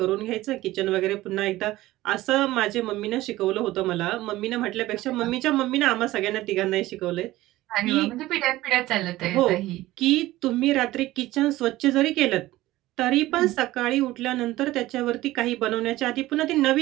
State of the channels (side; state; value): left; quieter; 17.0 dB